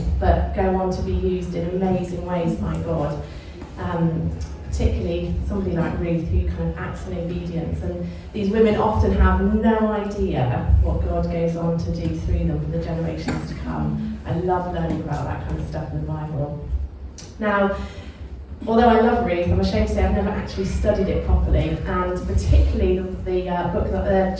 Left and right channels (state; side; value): identical; both; correlation 1.00